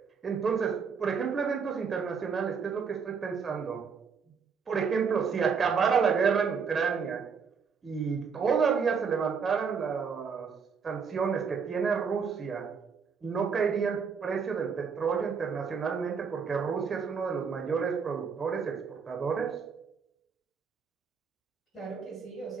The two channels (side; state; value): left; quieter; 5.9 dB